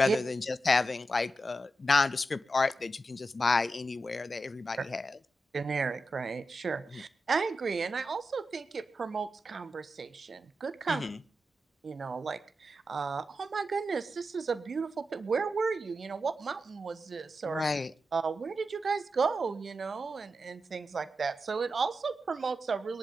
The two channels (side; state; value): both; normal; correlation 0.89